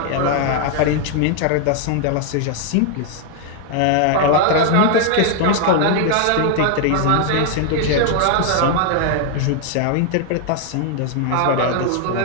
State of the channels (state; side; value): different; both; correlation 0.00